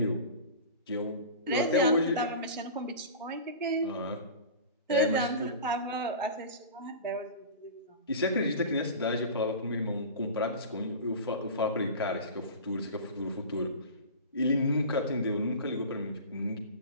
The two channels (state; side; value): inverted; both; correlation -0.33